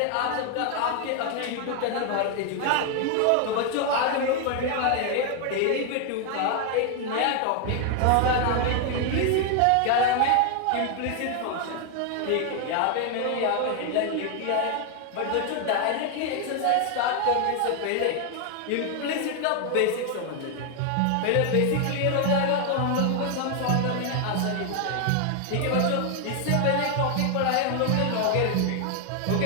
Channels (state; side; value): different; both; correlation 0.00